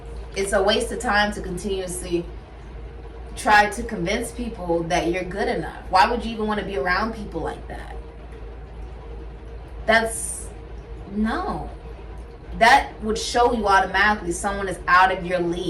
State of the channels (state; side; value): identical; both; correlation 1.00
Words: It's a waste of time to continuously try to convince people that you're good enough. Why would you even want to be around people like that? No. That would show you automatically someone is out of your